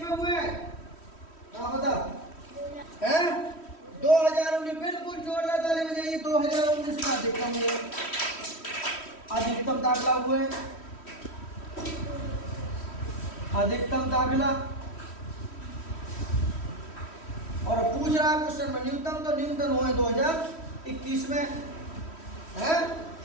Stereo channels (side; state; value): right; late; 3.1 ms